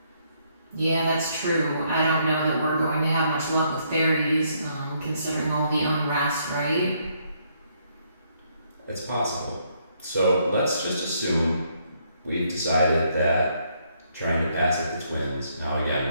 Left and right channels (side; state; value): both; inverted; correlation -0.72